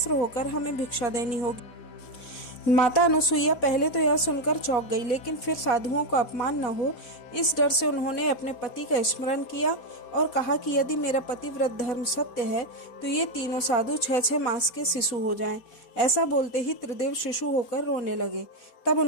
होकर हमें भिक्षा देनी होगी। माता अनुसुईया पहले तो यह सुनकर चौंक गई, लेकिन फिर साधुओं का अपमान न हो इस डर से उन्होंने अपने पति का स्मरण किया और कहा कि यदि मेरा पतिव्रत धर्म सत्य है तो ये तीनों साधु 6-6 मास के शिशु हो जाएं। ऐसा बोलते ही त्रिदेव शिशु होकर रोने लगे। तब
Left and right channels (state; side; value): late; right; 4.1 ms